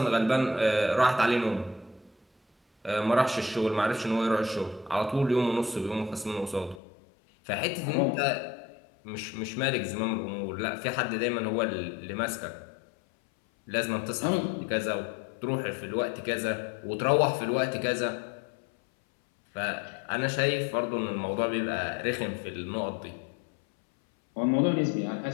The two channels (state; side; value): drops out; right; at 6.8 s